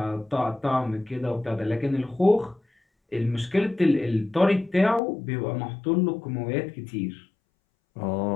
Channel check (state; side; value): drops out; right; at 5.0 s